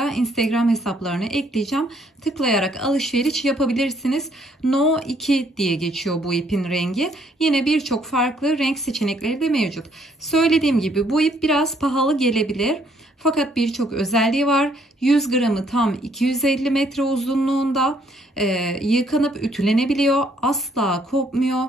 Instagram hesaplarını ekleyeceğim. Tıklayarak alışveriş yapabilirsiniz. No 2 diye geçiyor bu ipin rengi. Yine birçok farklı renk seçenekleri de mevcut. Söylediğim gibi bu ip biraz pahalı gelebilir. Fakat birçok özelliği var. 100 gramı tam 250 metre uzunluğunda. Yıkanıp ütülenebiliyor. Asla kopmuyor.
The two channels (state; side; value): normal; both; correlation 0.67